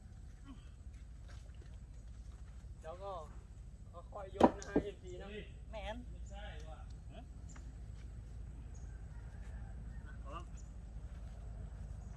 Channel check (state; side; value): identical; both; correlation 1.00